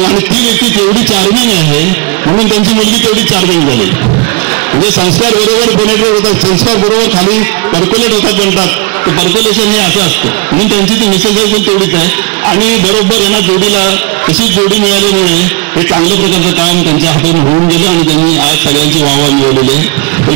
आणि ती व्यक्ती तेवढी चार्मिंग आहे म्हणून त्यांची मुलगी तेवढी चार्मिंग झाली. म्हणजे संस्कार बरोबर पेनेट्रेट होतात, संस्कार बरोबर खाली पर्क्युलेट होतात म्हणतात, ते पर्क्युलेशन हे असं असतं. म्हणून त्यांची ती मिसेस पण तेवढीच आहे, आणि बरोबर यांना जोडीला तशीच जोडी मिळाल्यामुळे हे चांगल्या प्रकारचं काम त्यांच्या हातून होऊन गेलं आणि त्यांनी आज सगळ्यांची वाहवा मिळवलेली आहे.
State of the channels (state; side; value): quieter; left; 29.0 dB